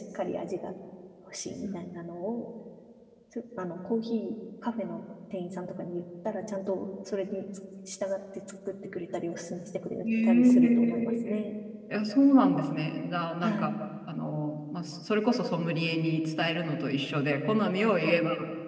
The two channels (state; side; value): identical; both; correlation 1.00